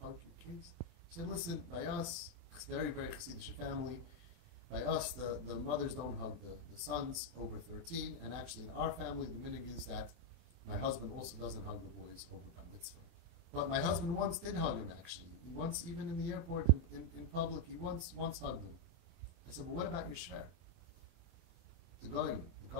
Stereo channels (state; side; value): late; left; 24 ms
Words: hug your kids? She said, listen, by us, it's a very, very Chassidish family. By us, the mothers don't hug the sons over 13. And actually, in our family, the minhag is that my husband also doesn't hug the boys over bar mitzvah. But my husband once did hug him, actually. He once, even in the airport, in public, he once hugged him. I said, but what about your shver? The goyim, the